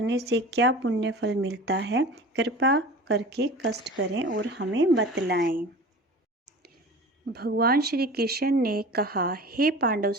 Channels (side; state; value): both; normal; correlation 0.37